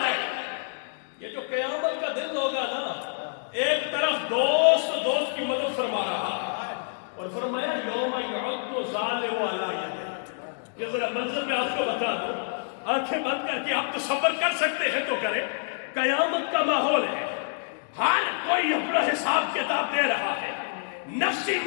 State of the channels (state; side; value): silent; right; digital silence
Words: یہ جو قیامت کا دن ہوگا نا، ایک طرف دوست کی مدد فرما رہا اور فرمایا یوم یعض الظالم علی یدیہ۔ یہ ذرا منظر میں آپ کو بتا دوں، آنکھیں بند کر کے آپ تصور کر سکتے ہیں تو کریں، قیامت کا ماحول ہے، ہر کوئی اپنا حساب کتاب دے رہا ہے، نفسی